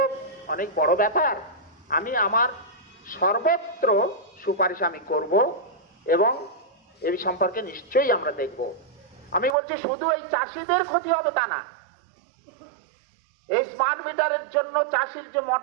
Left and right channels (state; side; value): drops out; left; at 9.6 s